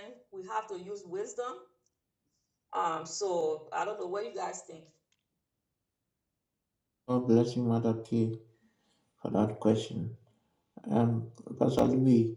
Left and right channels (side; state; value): both; identical; correlation 1.00